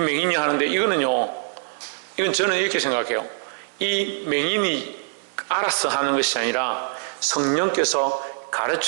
하는데 이거는요, 이건 저는 이렇게 생각해요. 이 맹인이 알아서 하는 것이 아니라 성령께서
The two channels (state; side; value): silent; left; 63 dB below the other